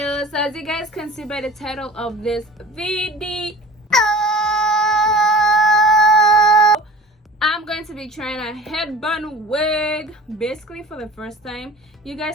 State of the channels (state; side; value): normal; both; correlation 0.41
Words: So as you guys can see by the title of this video, I'm going to be trying a headband wig basically for the first time. You